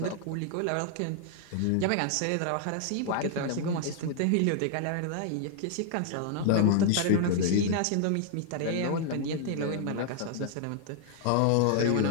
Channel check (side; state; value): both; different; correlation 0.00